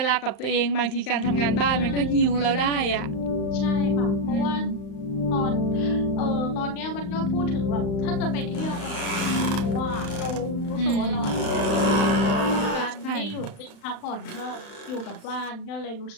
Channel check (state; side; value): late; right; 35 ms